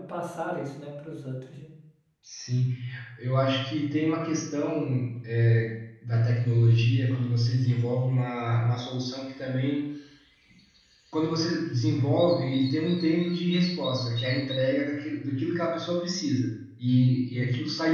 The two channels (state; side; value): identical; both; correlation 1.00